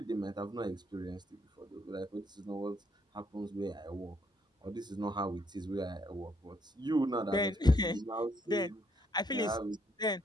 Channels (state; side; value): normal; both; correlation 0.71